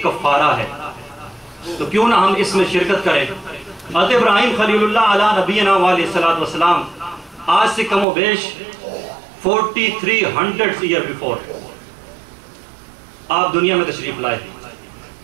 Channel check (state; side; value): drops out; left; at 8.1 s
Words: کفارہ ہے. تو کیوں نہ ہم اس میں شرکت کریں. حضرت ابراہیم خلیل اللہ علیہ نبینا علیہ السلام آج سے کم و بیش 4300 ایئر بیفور آپ دنیا میں تشریف لائے.